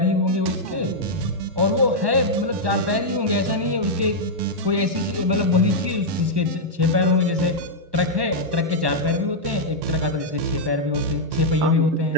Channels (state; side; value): late; left; 1.1 ms